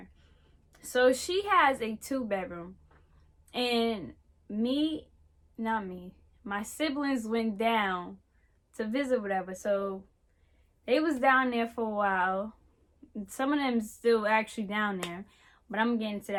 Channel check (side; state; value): both; identical; correlation 1.00